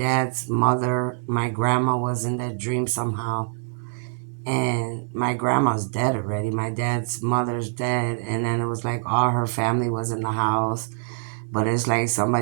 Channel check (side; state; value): left; silent; digital silence